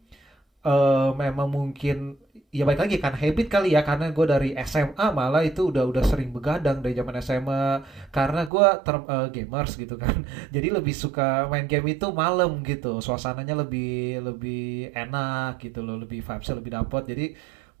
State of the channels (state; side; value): drops out; left; at 8.5 s